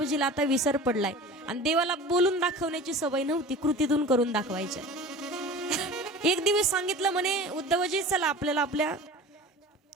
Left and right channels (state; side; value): normal; both; correlation 0.38